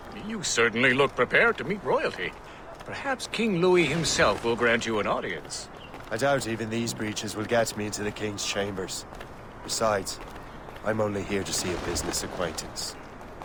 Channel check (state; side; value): identical; both; correlation 1.00